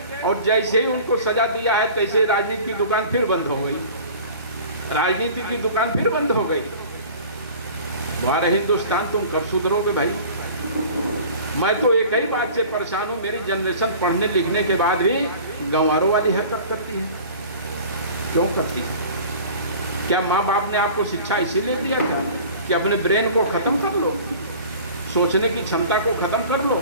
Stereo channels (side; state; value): both; inverted; correlation -0.43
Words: और जैसे ही उनको सजा दिया है तैसे राजनीति की दुकान फिर बंद हो गई, राजनीति की दुकान फिर बंद हो गई। हमारे हिंदुस्तान तुम कब सुधरोगे भाई? मैं तो एक ही बात से परेशान हूं, मेरी जनरेशन पढ़ने लिखने के बाद भी गंवारों वाली हरकत करती है। क्यों करती है? क्या माँ बाप ने आपको शिक्षा इसीलिए दिया था कि अपने ब्रेन को खत्म कर लो, सोचने की क्षमता को खत्म कर